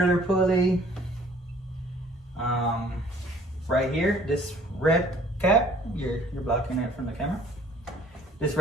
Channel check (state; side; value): normal; both; correlation 0.55